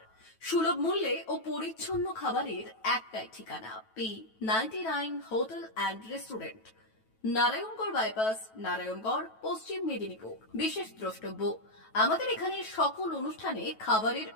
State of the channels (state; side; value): late; right; 9.2 ms